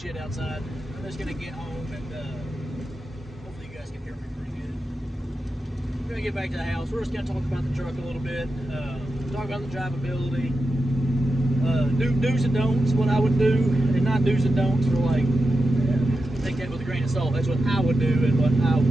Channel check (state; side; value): normal; both; correlation 0.90